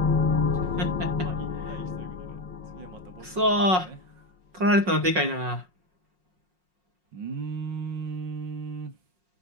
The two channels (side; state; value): left; late; 5.5 ms